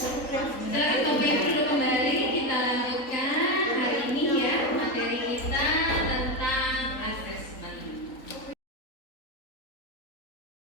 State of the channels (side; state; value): right; late; 3.9 ms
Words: Silakan Bapak Ibu duduk kembali. Kita lanjutkan hari ini ya materi kita tentang asesmen.